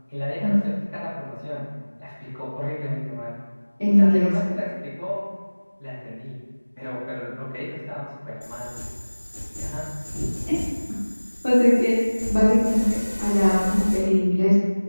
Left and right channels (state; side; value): inverted; both; correlation -1.00